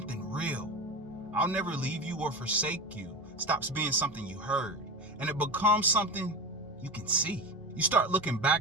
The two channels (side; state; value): both; normal; correlation 0.24